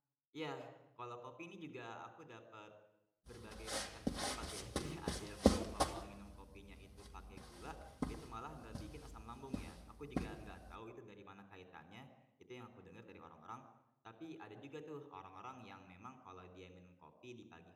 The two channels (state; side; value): identical; both; correlation 1.00